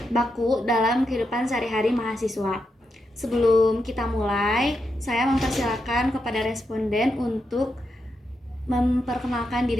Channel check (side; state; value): both; normal; correlation 0.85